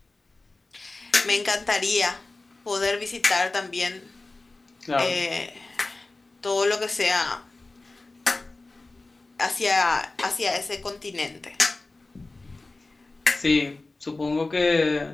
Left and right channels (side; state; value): right; quieter; 3.2 dB